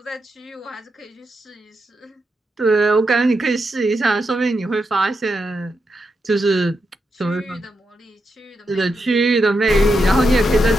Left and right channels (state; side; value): normal; both; correlation 0.85